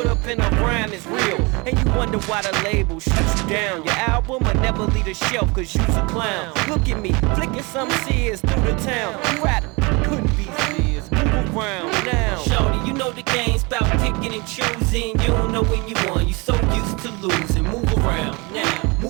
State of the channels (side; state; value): left; quieter; 27.3 dB